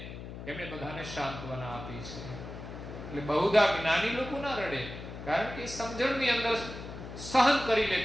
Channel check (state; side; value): noise; left; hum, 10 dB below the sound